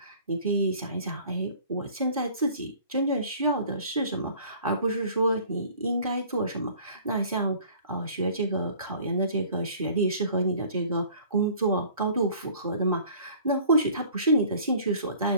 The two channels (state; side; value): inverted; both; correlation -0.50